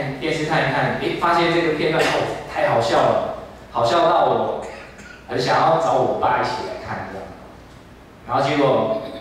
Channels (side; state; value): both; identical; correlation 1.00